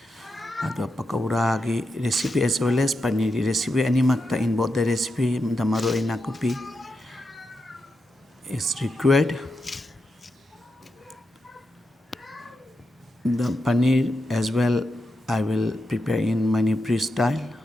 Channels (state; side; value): normal; both; correlation 0.87